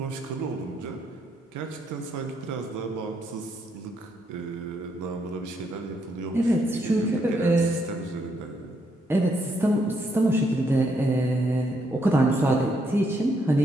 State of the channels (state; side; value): normal; both; correlation 0.75